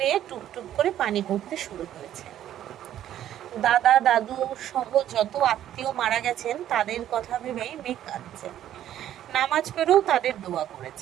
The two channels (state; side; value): quieter; left; 11.6 dB